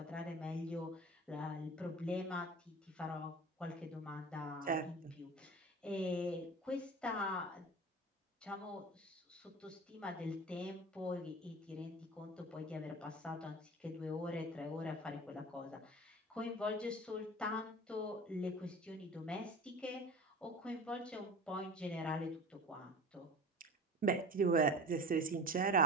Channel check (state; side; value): normal; both; correlation 0.36